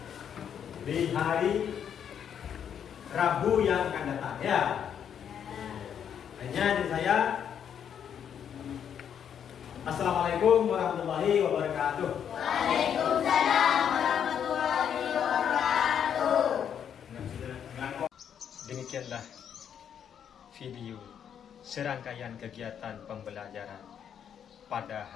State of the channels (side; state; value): right; quieter; 8.5 dB